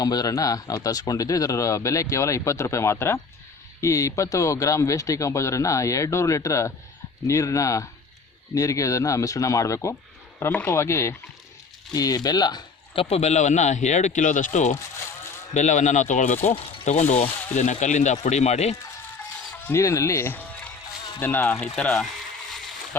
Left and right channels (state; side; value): quieter; right; 4.7 dB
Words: ನಾವು ತರಿಸ್ಕೊಂಡಿದ್ದು. ಇದರ ಬೆಲೆ ಕೇವಲ 20 ರೂಪಾಯಿ ಮಾತ್ರ. ಈ 20 ಗ್ರಾಮ್ ವೇಸ್ಟ್ ಡಿಕಾಂಪೋಸರನ್ನು 200 ಲೀಟ್ರ್ ನೀರಿಗೆ ಇದನ್ನು ಮಿಶ್ರಣ ಮಾಡಬೇಕು. ಪ್ರಮುಖವಾಗಿ ಈ ಕಪ್ಪು ಬೆಲ್ಲವನ್ನು 2 ಕಿಲೋದಷ್ಟು ಬೆಲ್ಲವನ್ನು ನಾವು ತಗೊಂಡು ಇದನ್ನು ಕಲ್ಲಿಂದ ಪುಡಿ ಮಾಡಿ ನೀರಿನಲ್ಲಿ ಇದನ್ನು ಈ ಥರ